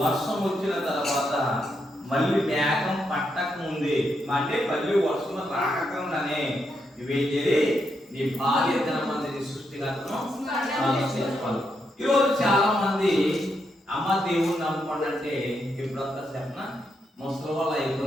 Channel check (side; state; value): both; normal; correlation 0.81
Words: వచ్చిన తర్వాత మళ్ళీ మేఘం పట్టక ముందే, అంటే మళ్ళీ వర్షం రాకుండానే నువ్వేం చేయాలి? నీ భార్య దినమంది సృష్టికర్తను చేసుకోవాలి. ఈరోజు చాలా మంది అమ్మ దేవుని నమ్ముకోండి అంటే ఎప్పుడంతా చెప్పిన ముసలి వాళ్ళు